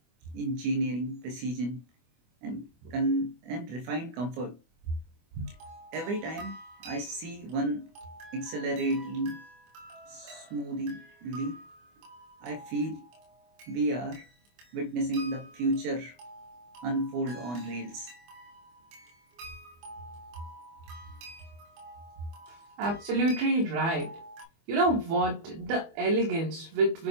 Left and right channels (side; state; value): left; late; 24 ms